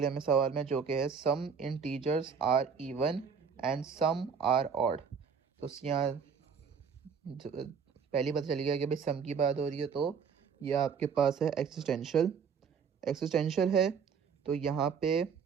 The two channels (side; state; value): left; quieter; 6.4 dB